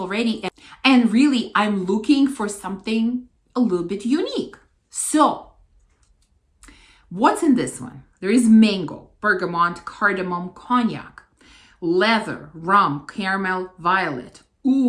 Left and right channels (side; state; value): both; identical; correlation 1.00